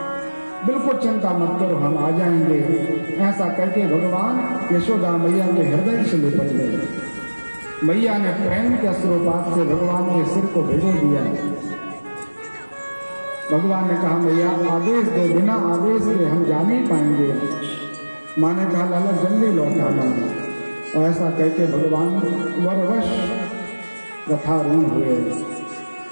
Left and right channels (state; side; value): inverted; both; correlation -1.00